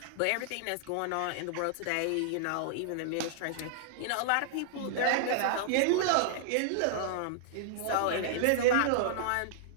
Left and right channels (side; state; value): both; different; correlation -0.01